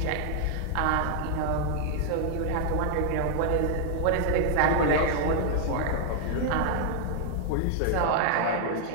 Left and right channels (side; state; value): both; different; correlation 0.00